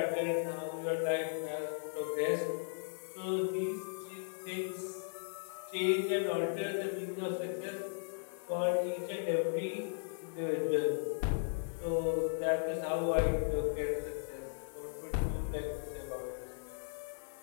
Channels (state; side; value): silent; right; digital silence